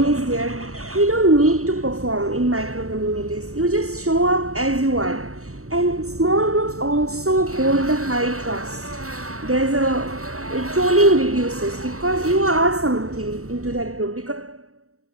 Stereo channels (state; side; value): late; left; 0.64 ms